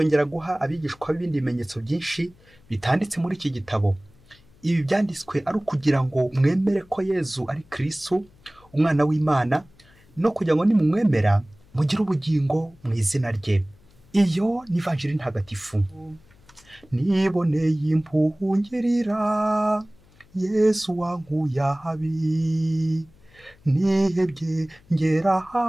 guha abigishwa ibindi bimenyetso byinshi bitanditse muri iki gitabo. ibi byanditswe ari ukugira ngo mwemere ko Yezu ari Kristo umwana w'Imana, no kugira ngo nimumwemera mugire ubugingo mu izina rye. Iyo ni ivanjiri ntagatifu. Niboneye impuhwe ungirira, Yesu wankuye ahabi, nihebye ngera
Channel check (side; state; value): left; noise; hum, 28 dB below the sound